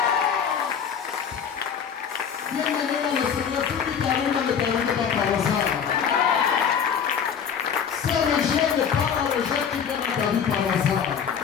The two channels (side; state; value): right; quieter; 7.4 dB